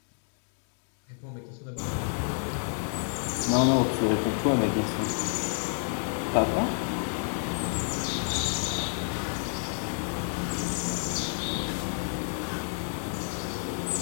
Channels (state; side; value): silent; right; 58 dB below the other